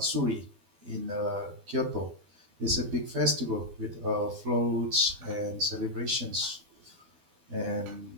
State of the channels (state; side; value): late; left; 12 ms